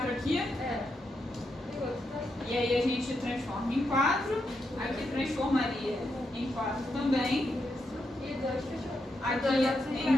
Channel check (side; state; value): both; normal; correlation 0.83